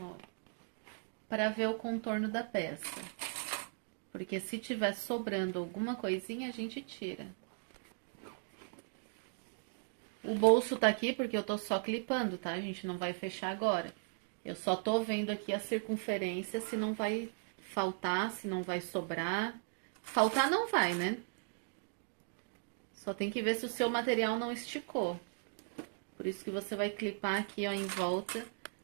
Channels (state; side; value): silent; left; digital silence